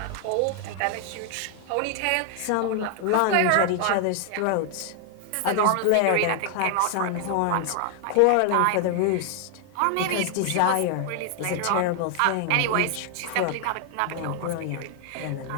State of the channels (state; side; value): different; both; correlation 0.00